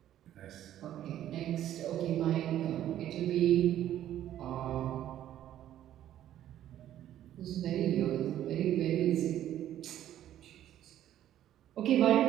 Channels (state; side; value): quieter; left; 11.9 dB